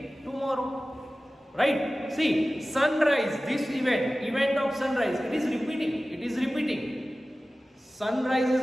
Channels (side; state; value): both; normal; correlation 0.96